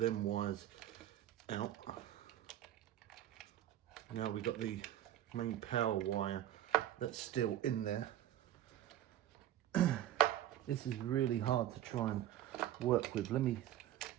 wires out. Now we've got the main power wire that's still in there. This is really hard to try and work with.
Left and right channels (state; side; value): quieter; left; 12.5 dB